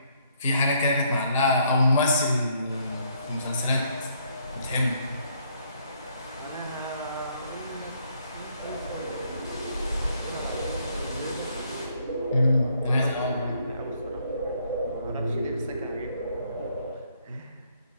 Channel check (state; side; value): inverted; both; correlation -0.69